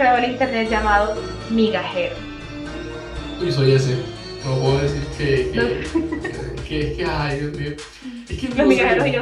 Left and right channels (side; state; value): both; identical; correlation 1.00